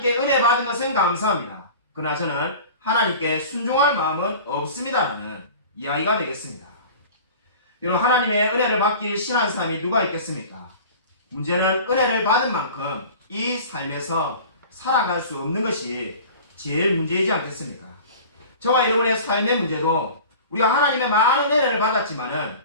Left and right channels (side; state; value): both; inverted; correlation -0.40